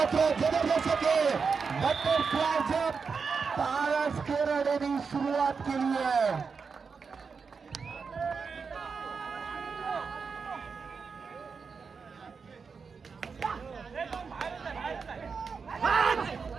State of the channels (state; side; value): quieter; left; 5.3 dB